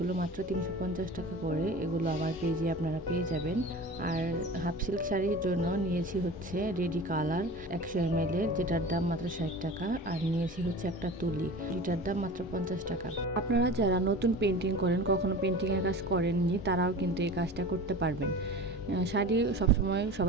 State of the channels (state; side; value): normal; both; correlation 0.36